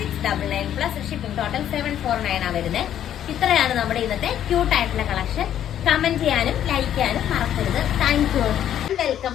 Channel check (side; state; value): right; quieter; 10.6 dB